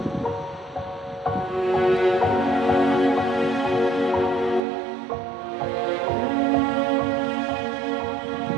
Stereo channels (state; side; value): drops out; left; at 4.6 s